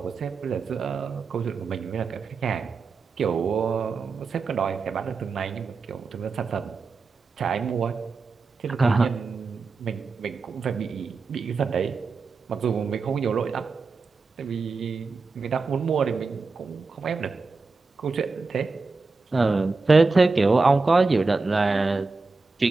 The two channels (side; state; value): left; quieter; 4.2 dB